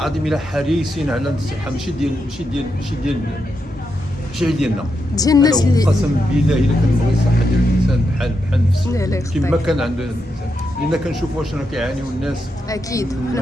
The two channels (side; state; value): both; normal; correlation 0.84